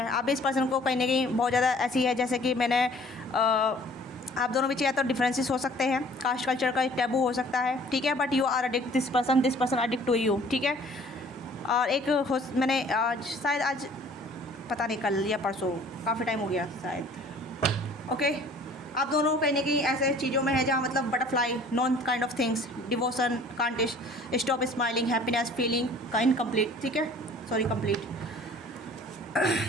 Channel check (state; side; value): normal; both; correlation 0.52